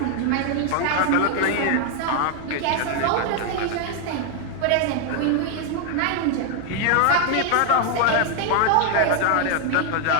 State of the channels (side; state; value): both; different; correlation 0.01